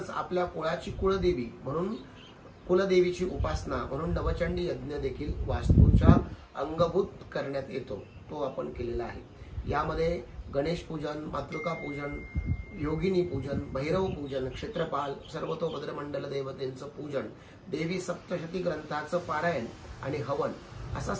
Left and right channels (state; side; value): identical; both; correlation 1.00